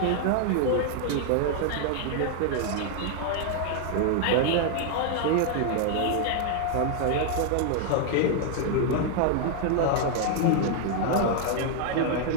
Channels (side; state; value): both; different; correlation 0.00